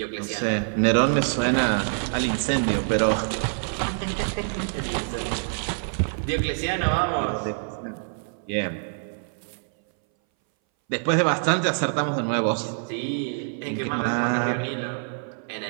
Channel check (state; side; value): silent; left; 60 dB below the other